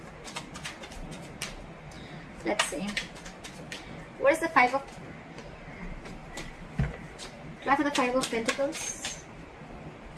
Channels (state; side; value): identical; both; correlation 1.00